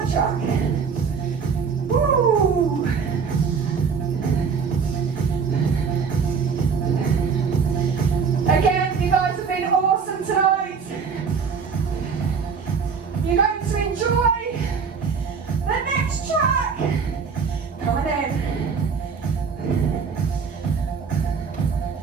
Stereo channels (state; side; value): quieter; left; 5.8 dB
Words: track. Woo! Again, you guys have been awesome tonight. You're going to enjoy the next track. Coming in.